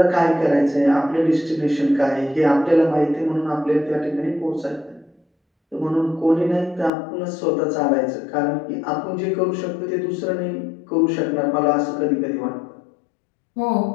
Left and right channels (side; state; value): right; drops out; at 6.9 s